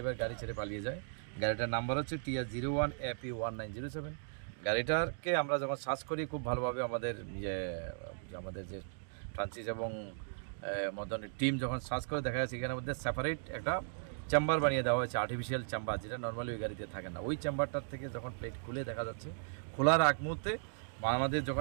গাড়ি ছেড়ে পালিয়ে যায়। গাড়িটার নাম্বার হচ্ছে TR01AP1907। গাড়িটাকে আমরা যখন সার্চ করি খুব ভালোভাবে আমাদের আমাদের যে ফ্রান্সিস এবং মদনের টিম যখন সার্চ করে দেখা যাচ্ছে এখানের মধ্যে সেপারেট একটা চেম্বার বানিয়ে দেওয়া হয়েছে, আর্টিফিশিয়াল চেম্বার, যেটা নর্মালি ওই গাড়িতে থাকে না। ওই চেম্বারটার থেকে যখন প্লেট খুলে দেখা যাচ্ছে, খোলার আগ মুহূর্তে আমাদের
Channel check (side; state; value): left; silent; digital silence